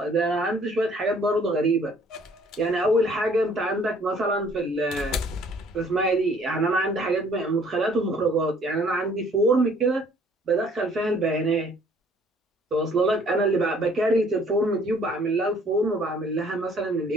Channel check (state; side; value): normal; both; correlation 0.58